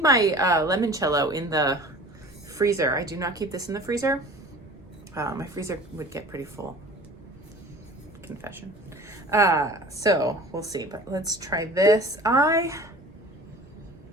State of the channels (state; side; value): noise; right; rumble, 25 dB below the sound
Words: my limoncello in the freezer. I do not keep this in the freezer. My freezer would get pretty full. Confession. So we'll see, but let's try this.